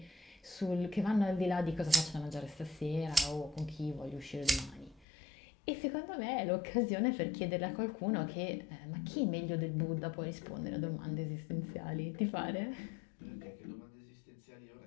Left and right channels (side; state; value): right; drops out; at 5.1 s